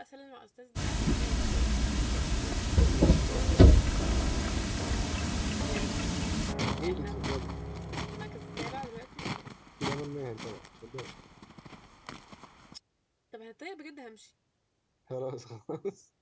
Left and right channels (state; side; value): identical; both; correlation 1.00